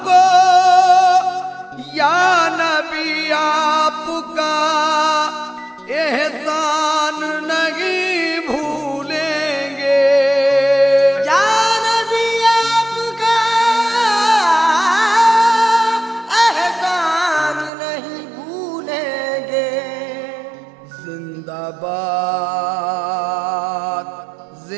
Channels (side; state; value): left; drops out; at 17.7 s